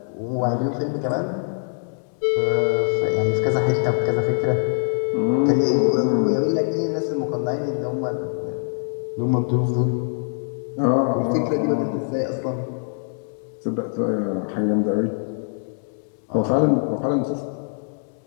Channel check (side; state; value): right; silent; digital silence